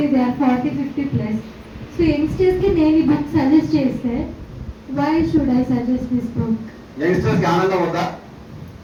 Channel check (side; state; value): both; identical; correlation 1.00